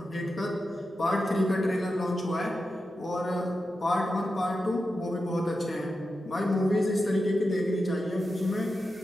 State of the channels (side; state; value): both; normal; correlation 0.90